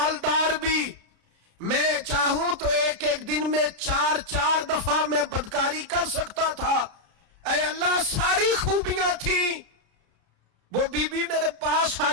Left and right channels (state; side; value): late; left; 33 ms